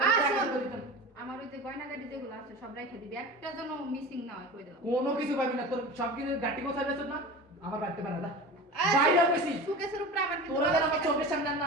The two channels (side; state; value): both; normal; correlation 0.32